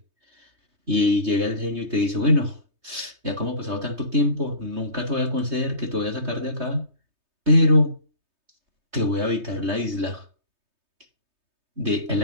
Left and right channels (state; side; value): late; left; 3.2 ms